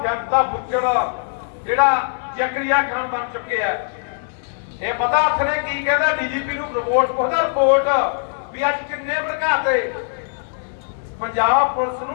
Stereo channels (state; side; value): silent; right; 65 dB below the other